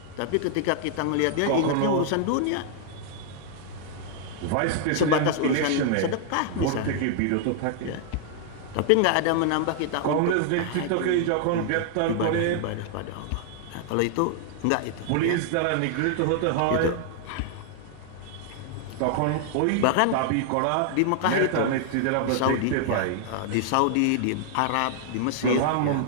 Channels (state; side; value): different; both; correlation -0.01